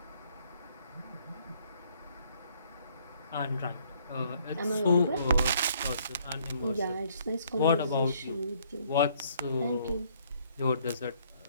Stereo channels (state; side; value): inverted; both; correlation -0.64